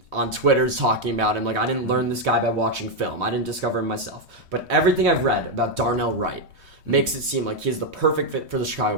on Twitter's talking about him. I didn't learn this guy by watching film. I didn't discover him myself. But everything I've read about Darnell Wright makes it seem like he's the perfect fit for the Chicago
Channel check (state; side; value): late; left; 3.2 ms